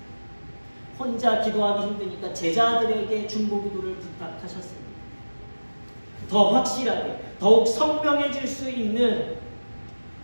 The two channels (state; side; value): inverted; both; correlation -1.00